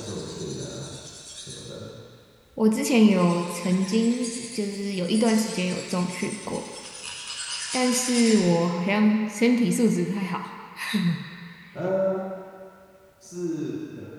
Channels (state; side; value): identical; both; correlation 1.00